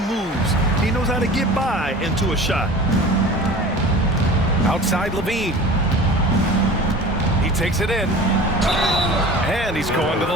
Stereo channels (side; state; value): both; normal; correlation 0.39